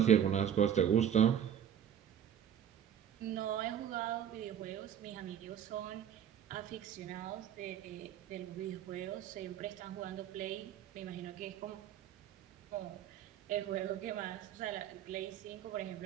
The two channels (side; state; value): left; quieter; 9.5 dB